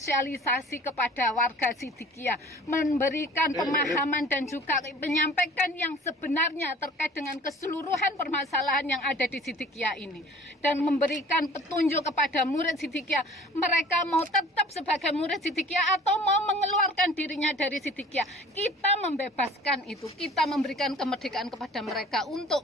kepada warga Siddiqiyah, memberikan pemahaman dan juga menyampaikan yang sebenarnya terkait dengan keseluruhan permasalahan yang ada di Siddiqiyah ini, dan memberikan petunjuk kepada murid Siddiqiyah, mereka mau tetap sebagai murid Siddiqiyah atau mau mengeluarkan dirinya dari Siddiqiyah. Kita membebaskan itu, kita memberikan kemerdekaan kepada mereka untuk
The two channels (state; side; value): normal; both; correlation 0.46